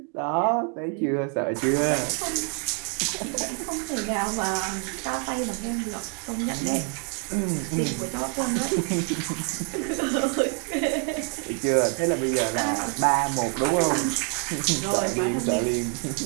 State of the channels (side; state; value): left; quieter; 39.0 dB